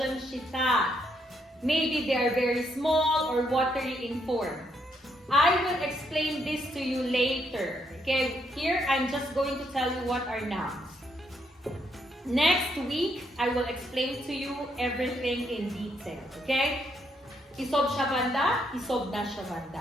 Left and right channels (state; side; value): normal; both; correlation 0.75